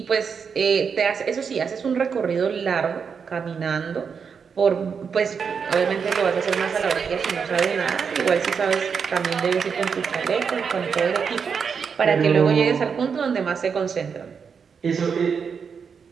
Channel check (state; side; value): quieter; left; 6.2 dB